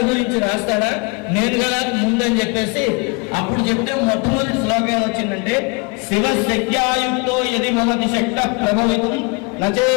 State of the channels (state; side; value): quieter; right; 30.9 dB